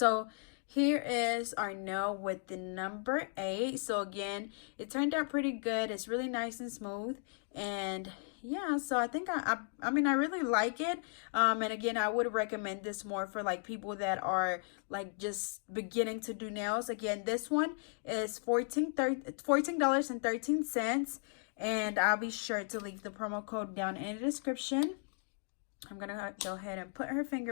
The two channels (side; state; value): right; silent; 54 dB below the other